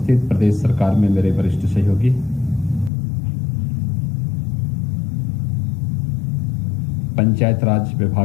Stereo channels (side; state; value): right; drops out; at 2.9 s